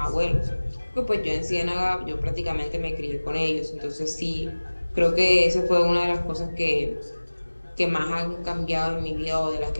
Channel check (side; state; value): both; inverted; correlation -1.00